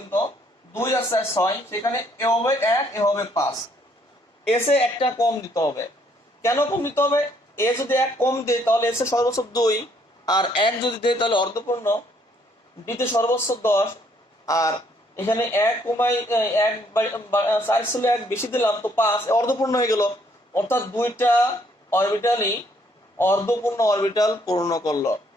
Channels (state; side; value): normal; both; correlation 0.67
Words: 2 আর 4 6, সেখানে এ হবে 1, এ হবে 5, এস এ 1টা কম দিতে হবে। কেন কম দিতে হবে? এ যদি 1 কম দেয় তাহলে এস এ সর্বোচ্চ 2, আর 1 যদি দেয় তাহলে অর্ধপূর্ণ, ডিতে সর্বোচ্চ 10, আর এখানে 1 কমাই 1 4 ছিল 1 বেশি দিলাম তো 5, অর্ধপূর্ণ হয়ে গেল, অর্থাৎ 2টা অরবিটালই অর্ধপূর্ণ অরবিটাল পূর্ণ করলো।